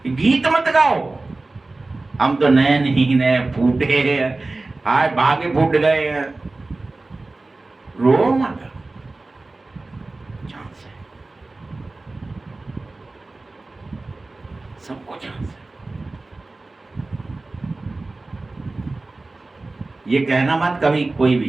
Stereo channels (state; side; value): quieter; left; 3.2 dB